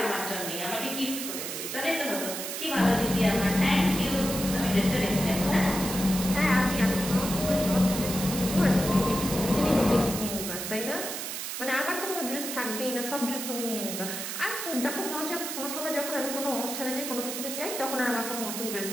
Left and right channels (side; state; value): right; noise; hiss, 5 dB below the sound